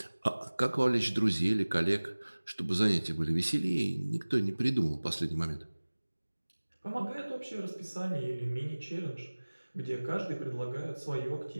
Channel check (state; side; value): inverted; both; correlation -1.00